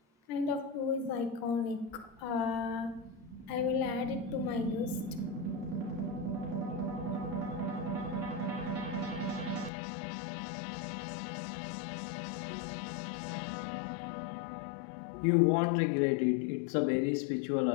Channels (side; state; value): right; drops out; at 9.7 s